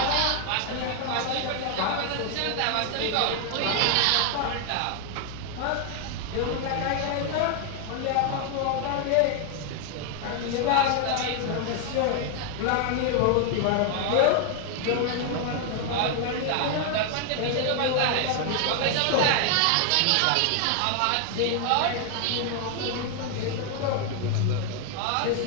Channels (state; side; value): different; both; correlation 0.00